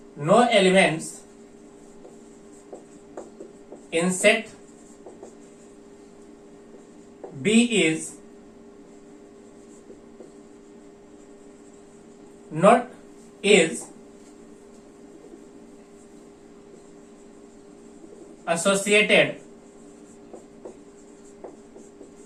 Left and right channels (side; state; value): both; identical; correlation 1.00